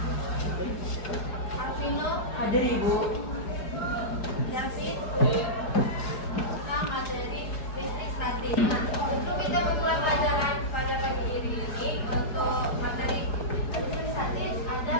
Arvino, Hadir Ibu. Yasin, kita materi listrik statis. Nah, untuk kita memulai pelajaran pada pagi ini untuk materi listrik statis ada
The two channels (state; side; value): late; right; 4.8 ms